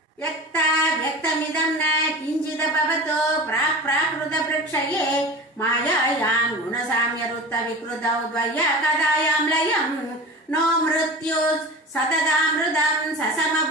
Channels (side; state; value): both; normal; correlation 0.34